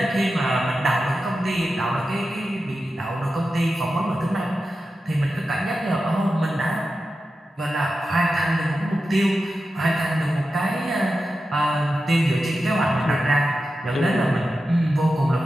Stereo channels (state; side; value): normal; both; correlation 0.91